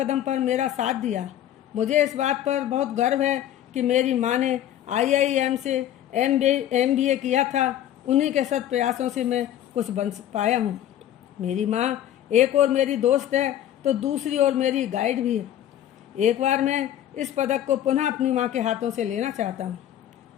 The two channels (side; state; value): right; quieter; 11.5 dB